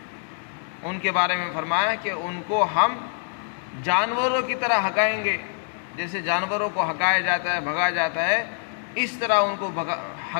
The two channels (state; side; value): silent; right; digital silence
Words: ان کے بارے میں فرمایا کہ ان کو ہم جانوروں کی طرح ہکائیں گے، جیسے جانوروں کو ہکایا جاتا ہے، بھگایا جاتا ہے، اس طرح ان کو